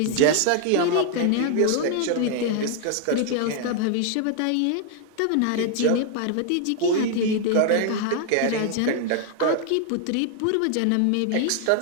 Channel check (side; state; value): both; different; correlation 0.00